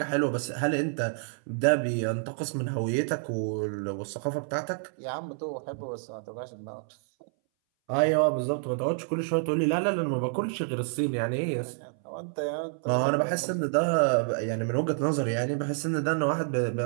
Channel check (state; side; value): silent; left; 59 dB below the other